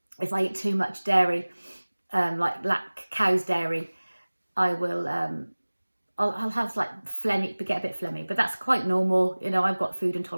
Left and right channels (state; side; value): inverted; both; correlation -1.00